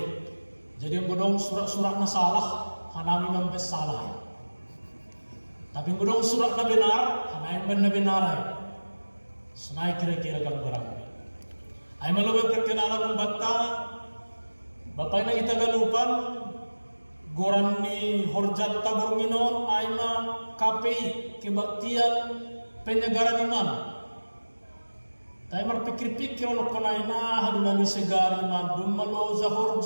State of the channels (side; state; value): both; inverted; correlation -1.00